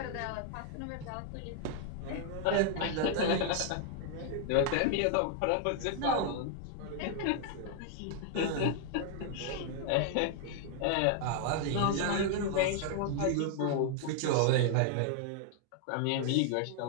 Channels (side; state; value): both; different; correlation 0.00